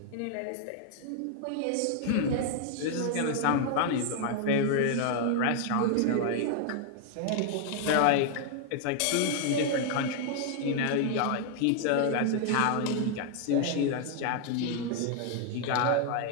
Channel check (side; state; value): both; different; correlation 0.00